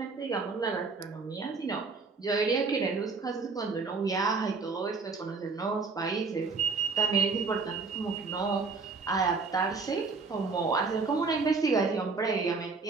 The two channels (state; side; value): quieter; left; 4.4 dB